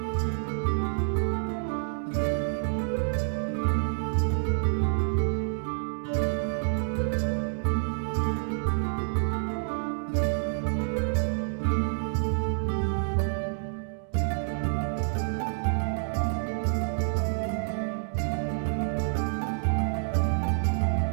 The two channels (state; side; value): silent; left; digital silence